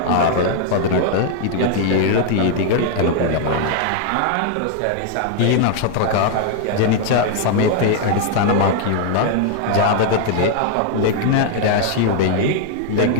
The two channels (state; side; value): different; both; correlation 0.00